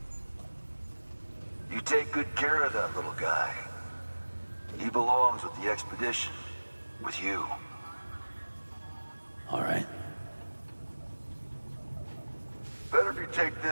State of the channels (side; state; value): both; inverted; correlation -1.00